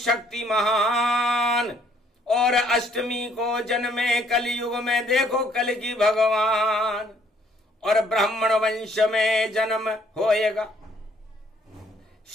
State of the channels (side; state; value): both; normal; correlation 0.64